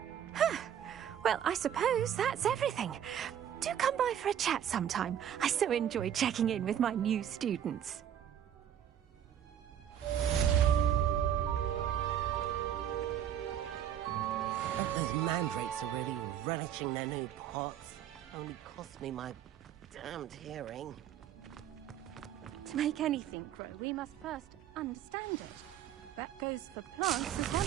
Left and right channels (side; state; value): left; quieter; 9.9 dB